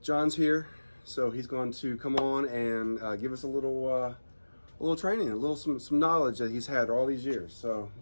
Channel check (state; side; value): inverted; both; correlation -1.00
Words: John's here, so he's going to come on and give us a little training, some knowledge that he's had all these years. So